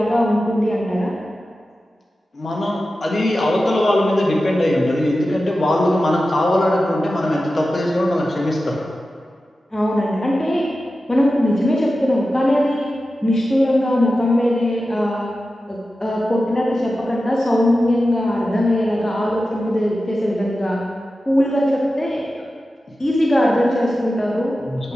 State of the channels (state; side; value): normal; both; correlation 0.93